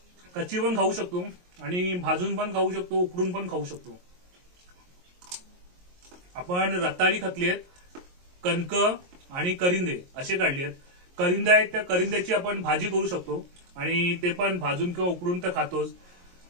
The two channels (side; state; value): left; late; 22 ms